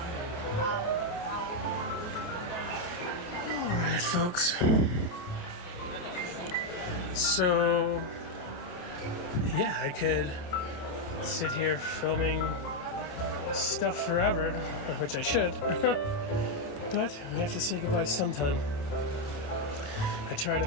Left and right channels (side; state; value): right; late; 29 ms